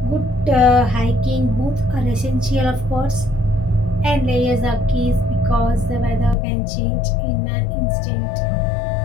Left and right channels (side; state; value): right; drops out; at 6.4 s